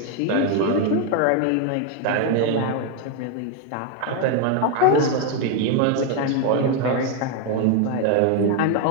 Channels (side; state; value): both; different; correlation 0.01